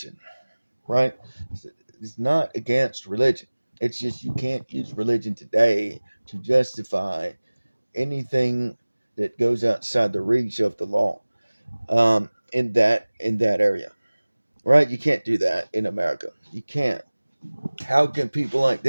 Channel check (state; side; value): inverted; both; correlation -1.00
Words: right? It's not against religion. It's just you can't use religion today to justify anything that goes outside the reach of the law. In that area, right? You can't do that in America. You can't. How can people like